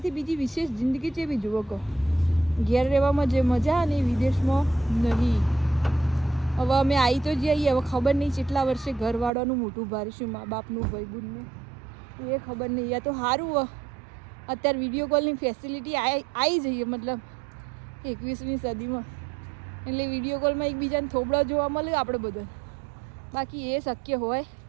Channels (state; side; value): drops out; left; at 9.3 s